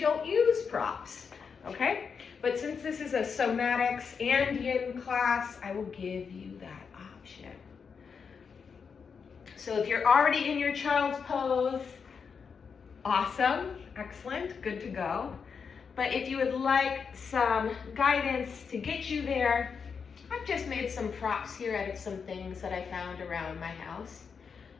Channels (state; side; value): quieter; right; 6.0 dB